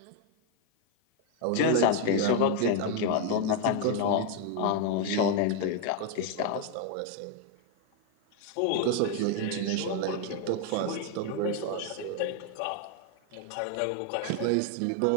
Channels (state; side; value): different; both; correlation 0.01